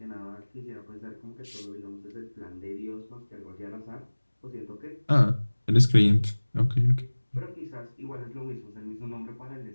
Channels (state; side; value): inverted; both; correlation -1.00